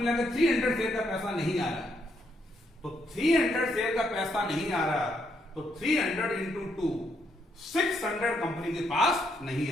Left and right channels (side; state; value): both; normal; correlation 0.76